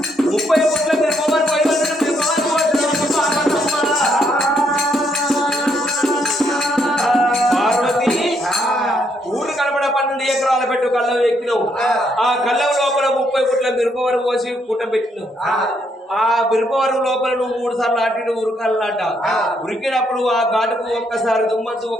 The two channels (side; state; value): both; normal; correlation 0.73